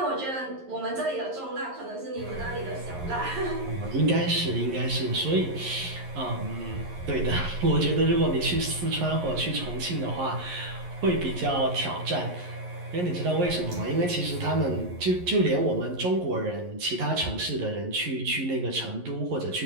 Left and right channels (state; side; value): late; left; 11 ms